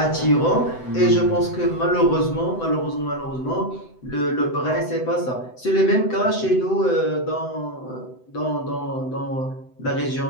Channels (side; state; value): right; late; 7.9 ms